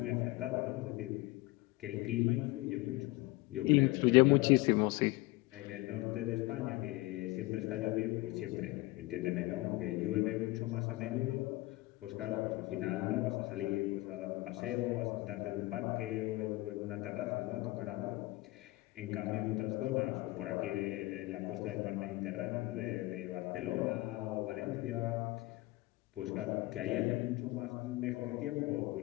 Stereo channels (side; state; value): right; quieter; 20.8 dB